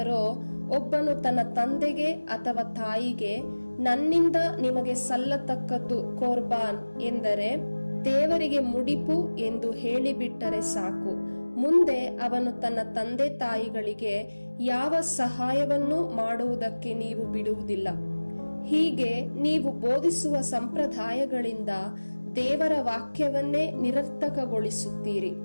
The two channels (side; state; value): both; inverted; correlation -1.00